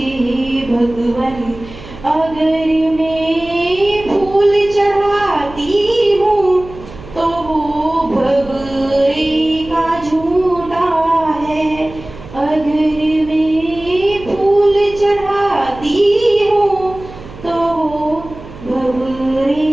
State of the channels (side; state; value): right; noise; hum, 16 dB below the sound